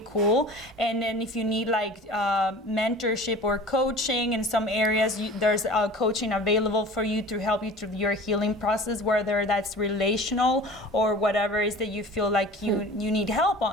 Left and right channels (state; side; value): normal; both; correlation 0.41